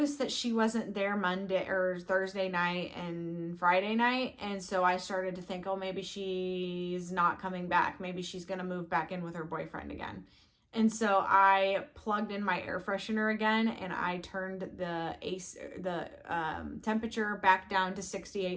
that she wasn't there Monday or Thursday night and Friday night. And so I started to think, oh, maybe she's not coming back. Maybe she's going to move back in with her boyfriend again. And so I plugged in my air freshener again, and I turned the temperature back down to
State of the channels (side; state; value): both; identical; correlation 1.00